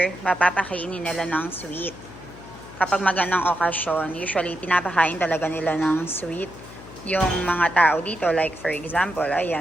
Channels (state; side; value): noise; left; hum, 18 dB below the sound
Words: mapapakainin nila ng sweet. Kapag magandang okasyon, usually pinapakain talaga nila ng sweet yung mga tao dito. Like, for example,